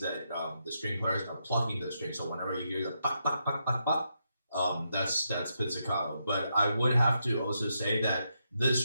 that the string players are plucking the string. So whenever you hear the pop, pop, pop, pop, pop, that's pizzicato. But I would have to also say that the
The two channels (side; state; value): both; inverted; correlation -0.82